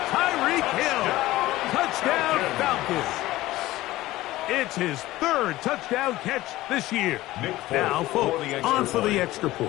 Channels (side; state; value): right; quieter; 17.0 dB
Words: Tyreek Hill. Touchdown Falcons. It's his 3rd touchdown catch this year. Now, folks, on for the extra